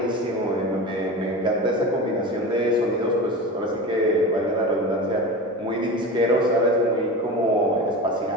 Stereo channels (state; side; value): normal; both; correlation 0.29